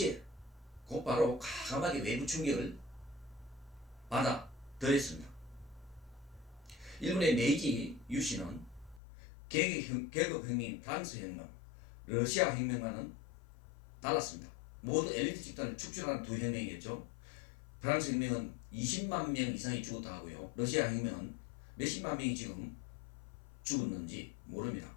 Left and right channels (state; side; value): drops out; right; at 9.0 s